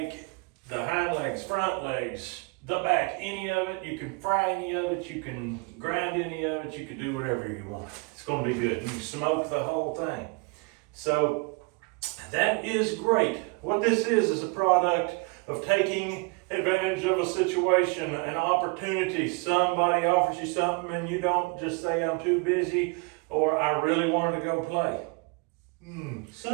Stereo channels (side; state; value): left; quieter; 30.1 dB